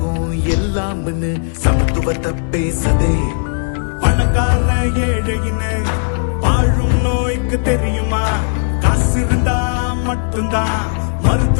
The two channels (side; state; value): right; silent; digital silence